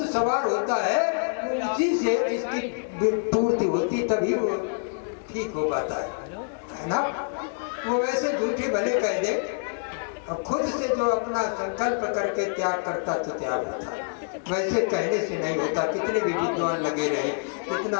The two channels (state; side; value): silent; right; digital silence